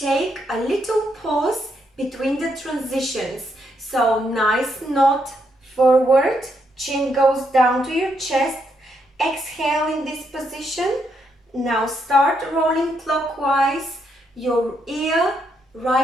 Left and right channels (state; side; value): normal; both; correlation 0.77